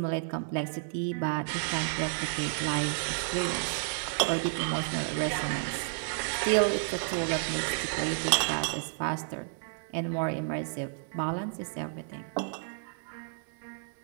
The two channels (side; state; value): left; silent; digital silence